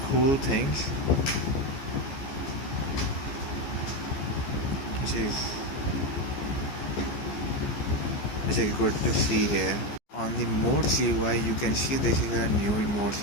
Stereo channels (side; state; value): right; late; 14 ms